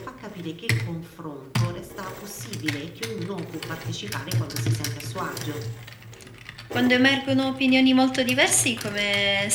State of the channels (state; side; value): identical; both; correlation 1.00